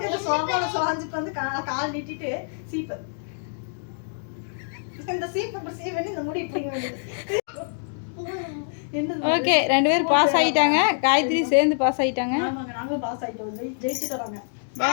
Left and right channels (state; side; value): silent; right; digital silence